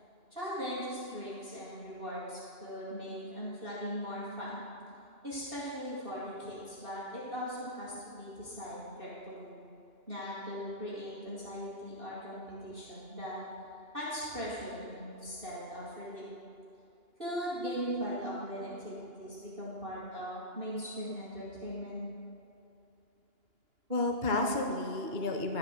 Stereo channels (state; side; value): late; left; 2.9 ms